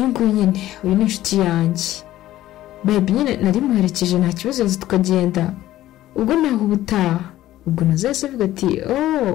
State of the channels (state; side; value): quieter; right; 14.5 dB